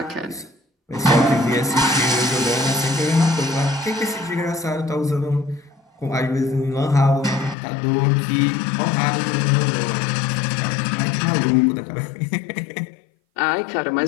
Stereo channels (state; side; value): drops out; right; at 7.6 s